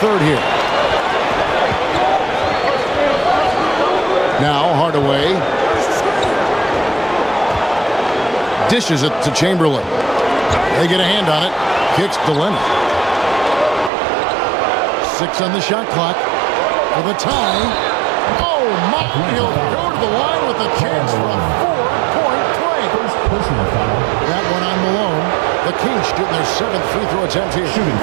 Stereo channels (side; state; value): left; drops out; at 13.9 s